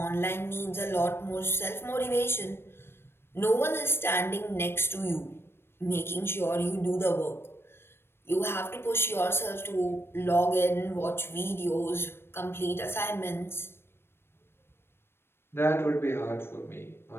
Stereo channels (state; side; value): late; right; 0.12 ms